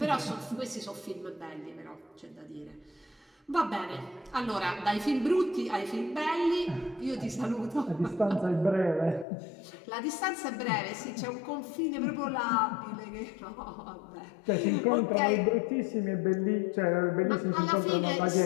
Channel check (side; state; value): right; drops out; at 9.2 s